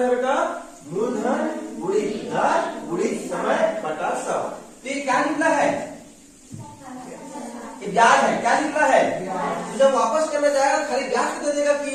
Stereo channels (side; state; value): both; identical; correlation 1.00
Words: है बेटा? मूलधन गुणित दर गुणित समय बटा 100। तो ये क्या निकला है? ये ब्याज है। क्या निकला है? तो जब वापस करने जाएगा खाली ब्याज को दे देगा